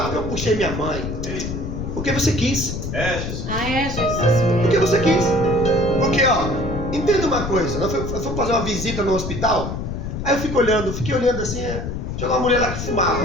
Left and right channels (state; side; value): noise; left; rumble, 5 dB below the sound